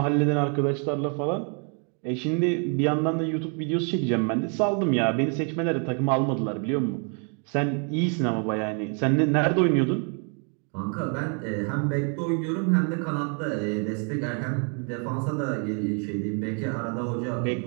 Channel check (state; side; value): quieter; left; 39.7 dB